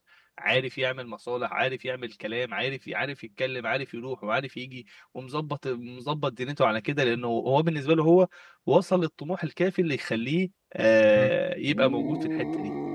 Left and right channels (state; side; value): identical; both; correlation 1.00